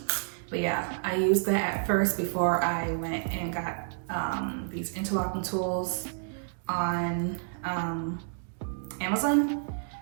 But yeah, I used that at first before I went and got these interlocking tools on Amazon.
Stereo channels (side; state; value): left; silent; digital silence